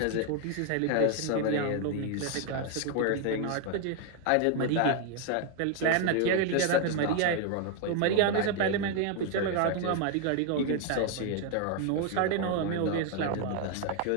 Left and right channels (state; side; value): different; both; correlation 0.01